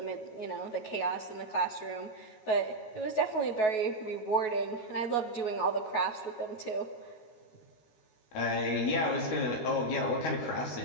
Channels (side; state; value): right; late; 13 ms